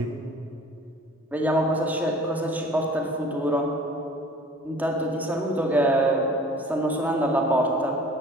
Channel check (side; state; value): both; normal; correlation 0.47